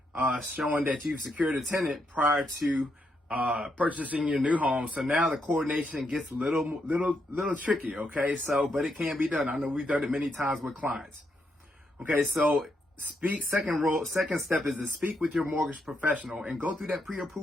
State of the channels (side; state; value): both; normal; correlation 0.80